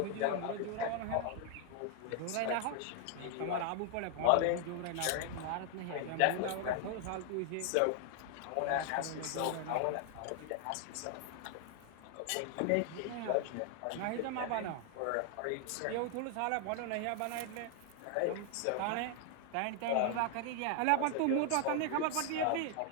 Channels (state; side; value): different; both; correlation 0.00